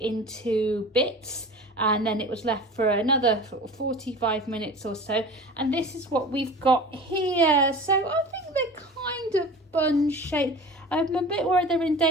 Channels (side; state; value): both; normal; correlation 0.37